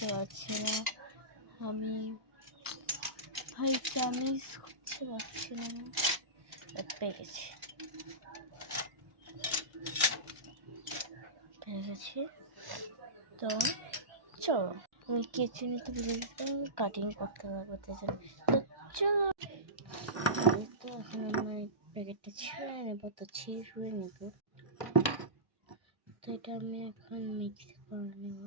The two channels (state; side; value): late; left; 1.2 ms